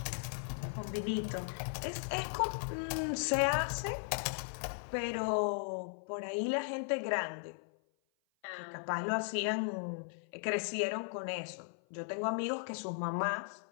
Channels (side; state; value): right; silent; 53 dB below the other